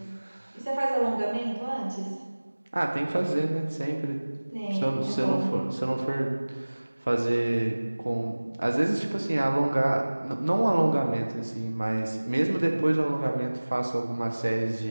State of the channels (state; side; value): inverted; both; correlation -1.00